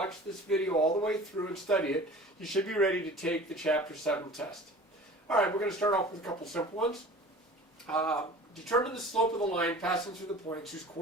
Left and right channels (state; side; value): normal; both; correlation 0.42